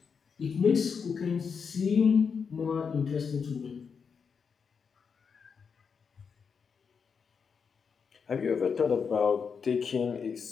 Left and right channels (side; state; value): right; quieter; 6.0 dB